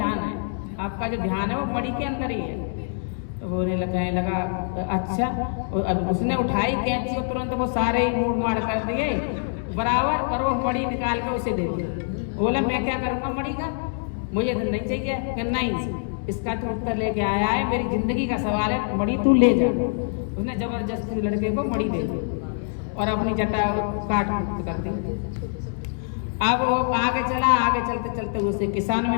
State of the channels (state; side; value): silent; right; digital silence